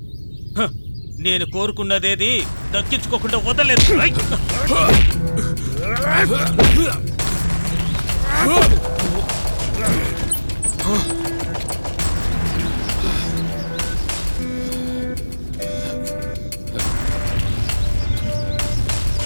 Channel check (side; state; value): both; inverted; correlation -1.00